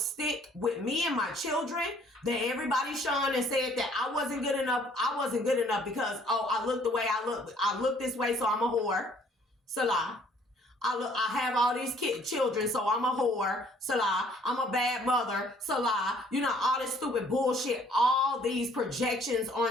with me and my children. That everybody shone and said that I wasn't good enough. I wasn't good enough because, I look the way I look. I look this way, so I'm a whore. Salah. I have all these children, so I'm a whore. Salah. I'm a bad mother. Salah. You know, all this stupid bullshit. All these projections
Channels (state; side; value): normal; both; correlation 0.60